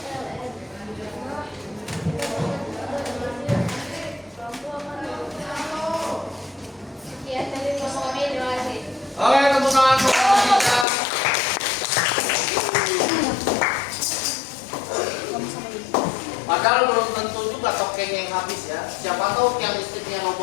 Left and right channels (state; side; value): drops out; right; at 10.9 s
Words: Oke, tepuk tangan untuk kelompok 3. Padahal belum tentu juga tokennya yang habis ya. Siapa tahu tiang listriknya